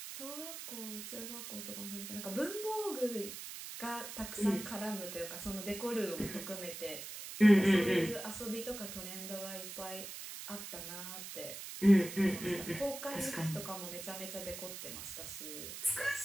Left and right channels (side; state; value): right; noise; hiss, 9 dB below the sound